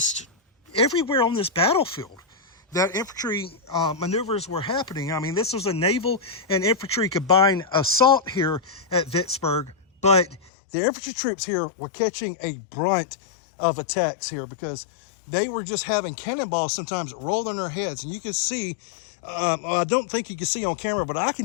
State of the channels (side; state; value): right; drops out; at 10.5 s